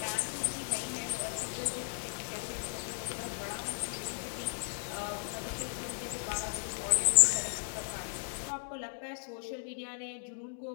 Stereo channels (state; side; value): silent; right; digital silence